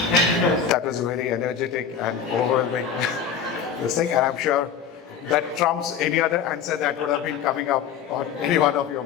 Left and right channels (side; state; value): right; quieter; 7.4 dB